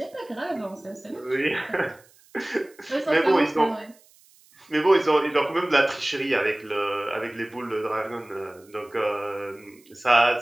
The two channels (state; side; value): noise; right; hiss, 29 dB below the sound